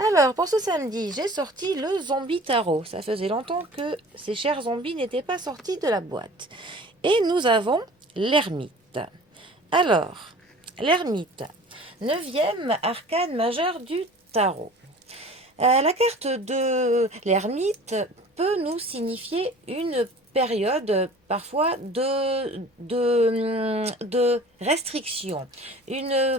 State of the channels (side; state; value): both; normal; correlation 0.44